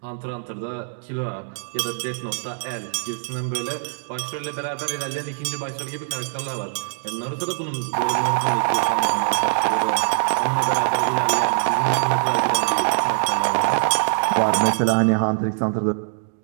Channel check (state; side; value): silent; left; digital silence